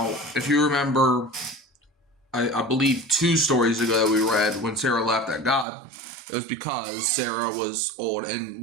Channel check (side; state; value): left; drops out; at 5.7 s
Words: if you remember, I believe 2 stories ago that we read when Sarah laughed at God, it was because Sarah was old. And